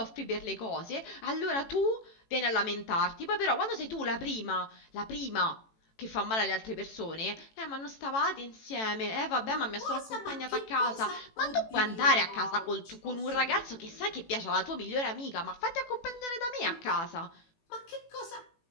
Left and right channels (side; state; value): right; late; 18 ms